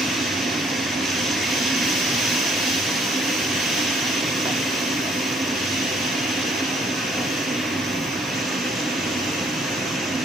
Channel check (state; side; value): normal; both; correlation 0.64